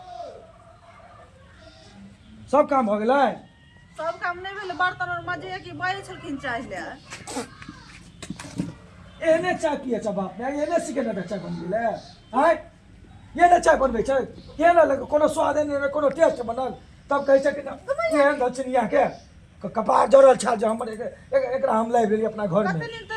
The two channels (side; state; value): both; identical; correlation 1.00